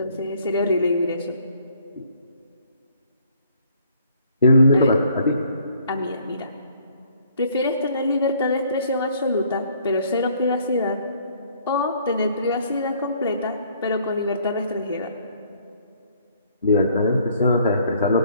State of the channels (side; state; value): both; inverted; correlation -0.62